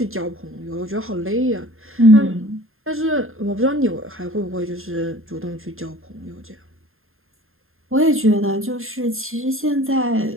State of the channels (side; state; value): left; late; 0.61 ms